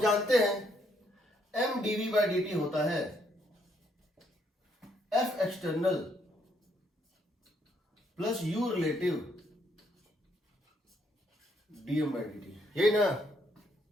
जानते हैं m dv by dt होता है f external plus u relative dm by dt, यही ना।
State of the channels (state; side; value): normal; both; correlation 0.72